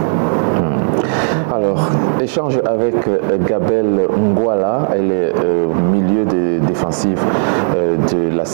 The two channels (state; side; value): silent; left; digital silence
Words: Alors, échange avec Gabelle Ngwala, elle est milieu défensif de la